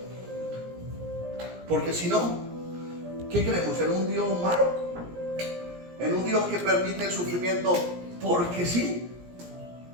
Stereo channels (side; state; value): left; late; 17 ms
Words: Porque si no, ¿qué creemos? ¿En un Dios malo? ¿En un Dios que permite el sufrimiento porque sí?